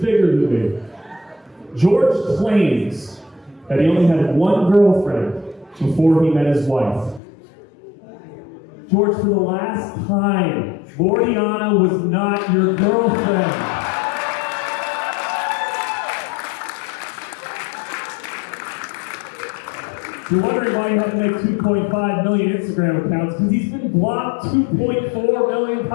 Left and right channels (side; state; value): right; drops out; at 7.2 s